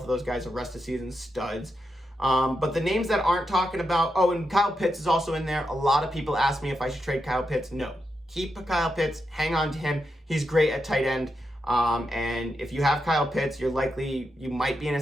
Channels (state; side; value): normal; both; correlation 0.86